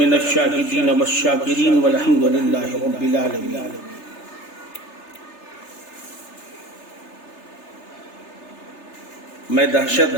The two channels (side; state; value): right; late; 3.3 ms